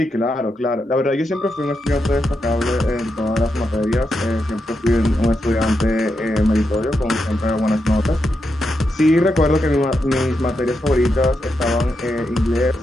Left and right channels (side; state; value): both; normal; correlation 0.85